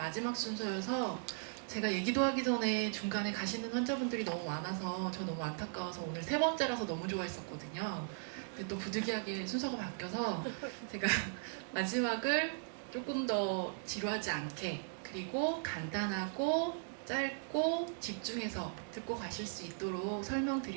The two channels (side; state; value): left; silent; digital silence